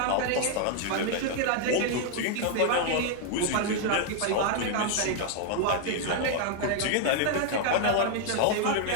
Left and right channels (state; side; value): different; both; correlation 0.00